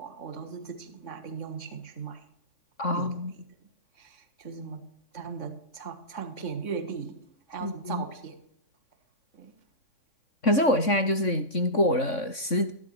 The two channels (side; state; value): right; late; 3.6 ms